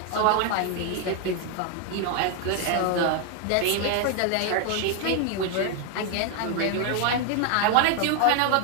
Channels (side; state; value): both; different; correlation 0.01